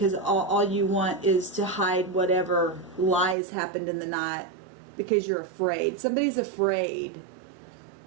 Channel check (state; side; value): drops out; left; at 3.4 s